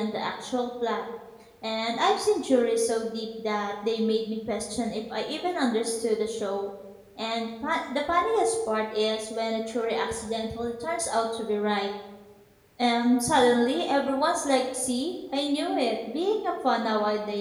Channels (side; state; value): both; identical; correlation 1.00